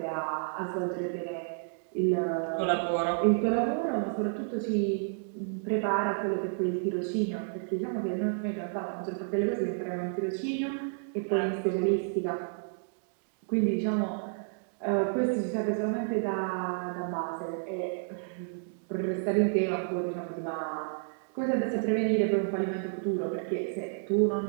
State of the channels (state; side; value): silent; left; digital silence